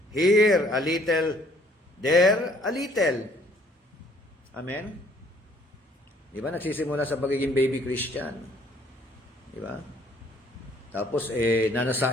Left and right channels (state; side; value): normal; both; correlation 0.61